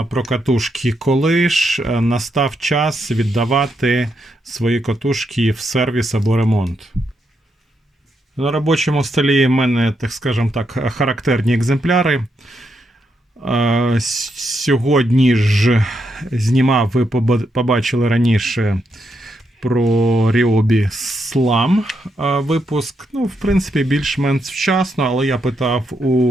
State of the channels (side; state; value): both; normal; correlation 0.81